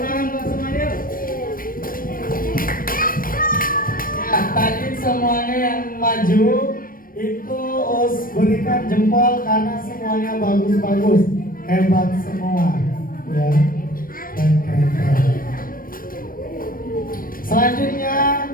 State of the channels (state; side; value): late; right; 0.41 ms